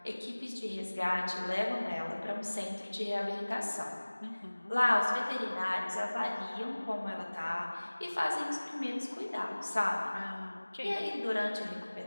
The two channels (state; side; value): inverted; both; correlation -1.00